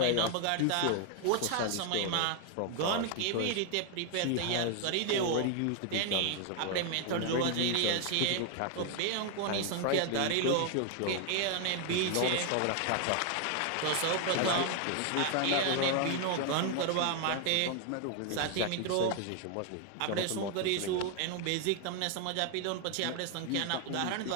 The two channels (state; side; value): different; both; correlation 0.00